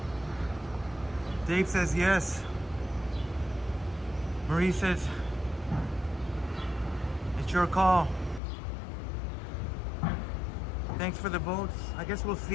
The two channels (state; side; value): drops out; right; at 8.4 s